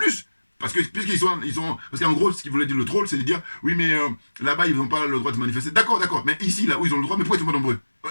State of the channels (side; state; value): both; inverted; correlation -1.00